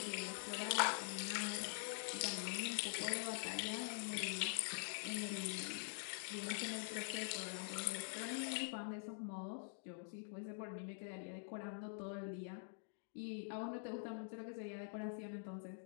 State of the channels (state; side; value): silent; right; digital silence